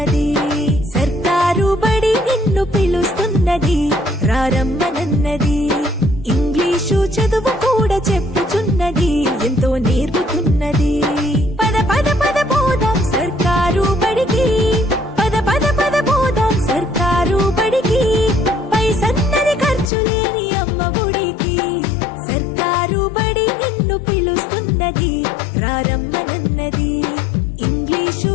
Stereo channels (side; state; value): right; drops out; at 19.9 s